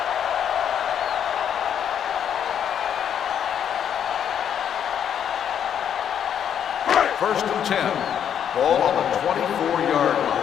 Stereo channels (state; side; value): quieter; right; 8.9 dB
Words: First and 10. Ball on the 24-yard line.